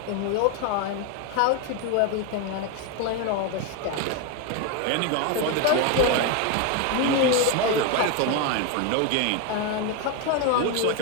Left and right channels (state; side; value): different; both; correlation 0.02